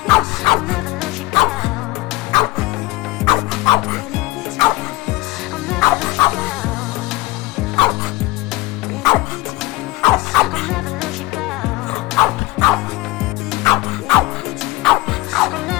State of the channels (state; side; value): quieter; right; 20.1 dB